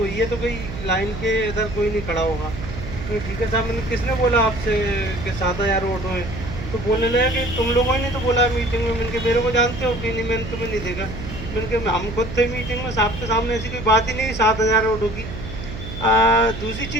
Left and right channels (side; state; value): right; noise; hum, 9 dB below the sound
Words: है, तो कोई लाइन के इधर कोई नहीं खड़ा होगा। तो ठीक है साहब, मैंने किसने बोला आपसे कि 7,000 ऑटो हैं? तो बोलने लगा कि तुम लोगों ने तो बोला मीटिंग में। मैंने मेरे को जानते हो कि नहीं? मैंने तुम्हें नहीं देखा। मैंने हम खुद थे मीटिंग में, साहब के सामने ऐसी कोई बात ही नहीं 7,000 ऑटो की। दूसरी